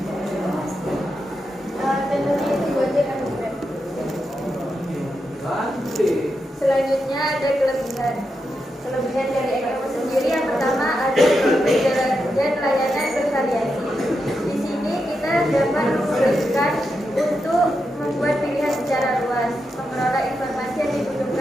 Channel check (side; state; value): both; normal; correlation 0.86